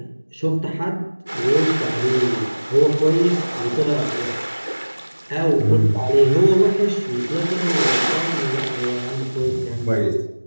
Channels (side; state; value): both; inverted; correlation -1.00